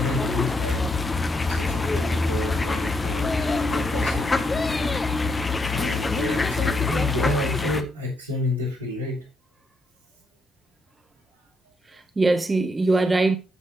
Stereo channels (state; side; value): normal; both; correlation 0.78